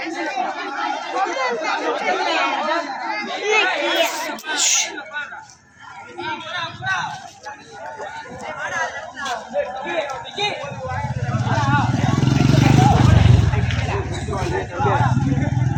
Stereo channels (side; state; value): both; identical; correlation 1.00